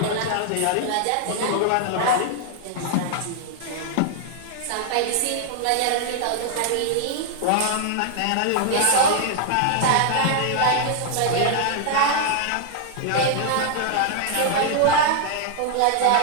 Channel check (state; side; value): different; both; correlation 0.00